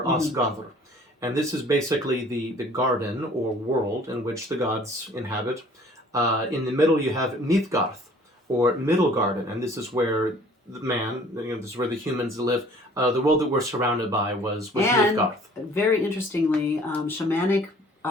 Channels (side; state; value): both; normal; correlation 0.53